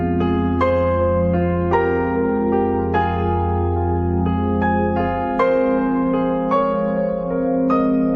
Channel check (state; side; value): identical; both; correlation 1.00